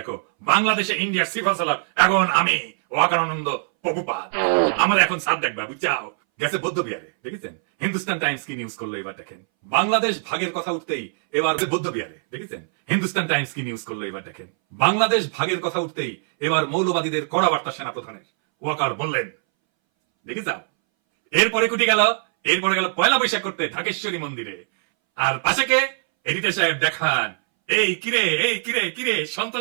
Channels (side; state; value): left; silent; 62 dB below the other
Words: বাংলাদেশে ইন্ডিয়ার সিফা সালার এখন আমি ওয়াকারানন্দ প্রভুপাদ। আমার এখন সাপ দেখবা, বুঝছাও? গেছে বৌদ্ধ বিহারে। দেখেছেন হিন্দুস্তান টাইমস কি নিউজ করলো এবার দেখেন। বাংলাদেশ ভাগের কথা উঠতেই এবার বৌদ্ধ বিহারে। দেখেছেন হিন্দুস্তান টাইমস কি নিউজ করলো এবার দেখেন। বাংলাদেশ ভাগের কথা উঠতেই এবার মৌলবাদীদের কড়া বার্তা সেনাপ্রধানের। ওয়াকার বললেন, দেখে যাও। এরপরে কুটি গেল, এরপরে গেল পয়লা বৈশাখ করতে ঢাকেশ্বরী মন্দিরে। আর পাশে কে? এডিটর সাহেব দেখান, এই কিরে এই কিরে কিরে